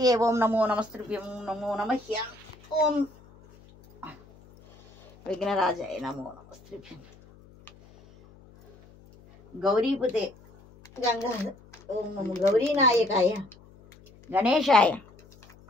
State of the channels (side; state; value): left; noise; hum, 25 dB below the sound